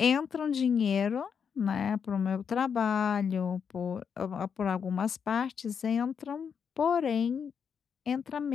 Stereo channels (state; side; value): quieter; right; 6.9 dB